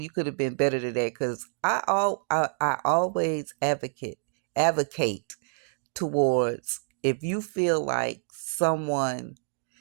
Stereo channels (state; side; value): silent; left; digital silence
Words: you could have been better than that. Because I always advocate towards, if you feel like someone